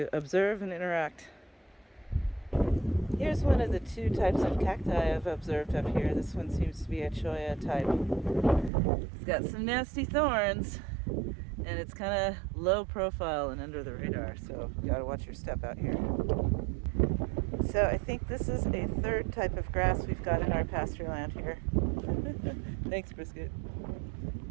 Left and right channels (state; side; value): drops out; left; at 8.7 s